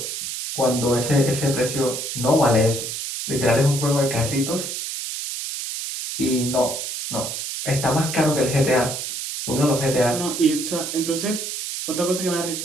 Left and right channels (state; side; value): noise; right; hiss, 5 dB below the sound